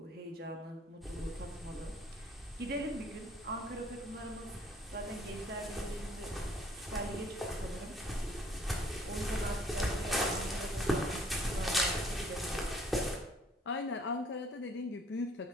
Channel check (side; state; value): both; normal; correlation 0.61